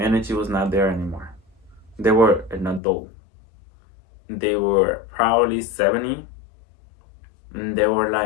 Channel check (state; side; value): drops out; right; at 2.8 s